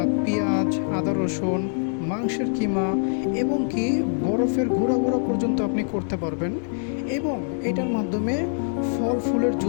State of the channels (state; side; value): silent; right; 62 dB below the other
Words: পেঁয়াজ, আদা, রসুন, মাংসের কিমা এবং কি বরফের গুঁড়া গুঁড়া পর্যন্ত আপনি করতে পারবেন এবং এটার মাধ্যমে ফল ফুলের